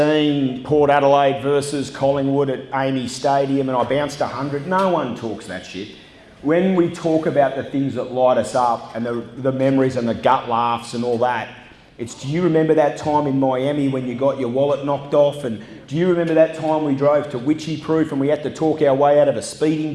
Port Adelaide versus Collingwood at Amy Stadium and I bounced 100. No one talks that shit. When we talk about the things that light us up and the memories and the gut laughs and all that, it's, do you remember that time in Miami when you got your wallet knocked off? And do you remember that time we drove to Witchy Proof and we had to talk our way out of a speeding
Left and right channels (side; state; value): both; identical; correlation 1.00